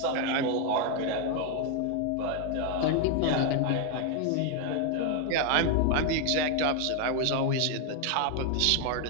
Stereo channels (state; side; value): different; both; correlation 0.01